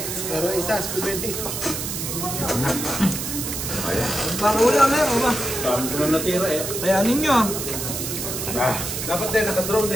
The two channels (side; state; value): right; noise; hiss, 4 dB below the sound